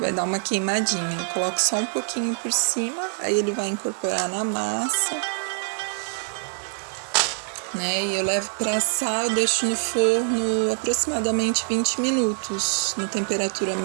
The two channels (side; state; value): left; silent; 62 dB below the other